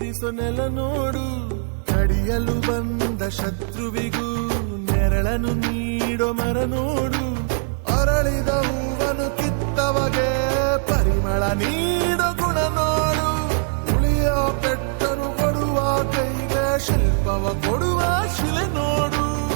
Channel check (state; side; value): silent; left; 59 dB below the other